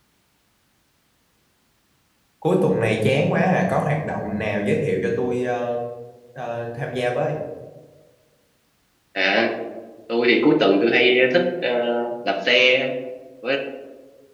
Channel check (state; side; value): identical; both; correlation 1.00